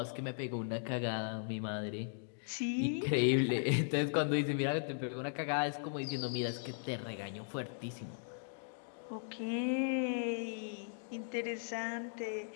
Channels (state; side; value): silent; right; digital silence